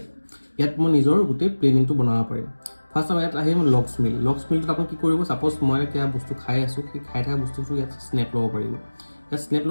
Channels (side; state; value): both; inverted; correlation -1.00